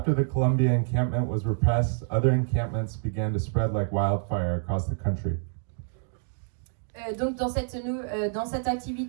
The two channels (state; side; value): silent; left; digital silence